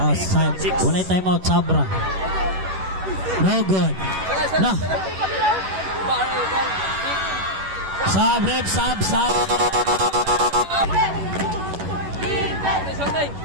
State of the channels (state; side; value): late; left; 11 ms